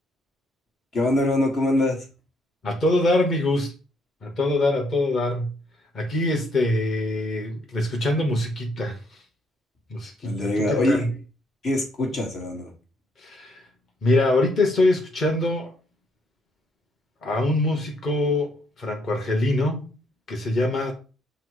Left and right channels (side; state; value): both; normal; correlation 0.71